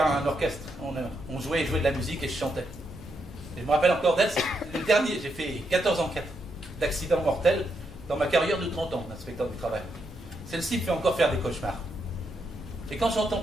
un orchestre. On jouait de la musique et je chantais. Et je me rappelle encore d'elle, c'est le dernier. J'ai fait 14 enquêtes d'accidents mortels dans ma carrière de 30 ans d'inspecteur du travail. Celle-ci me fait encore faire des cauchemars. Et quand j'entends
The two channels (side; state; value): both; normal; correlation 0.80